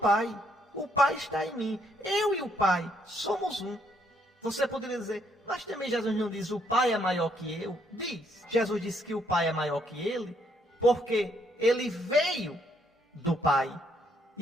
o Pai está em mim. Eu e o Pai somos um. Você poderia dizer, mas também Jesus não diz o Pai é maior que eu? Diz. Jesus disse que o Pai é maior que ele, porque ele veio do Pai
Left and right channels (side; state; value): both; normal; correlation 0.71